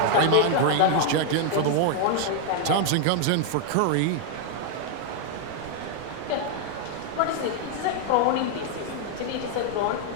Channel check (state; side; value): different; both; correlation 0.00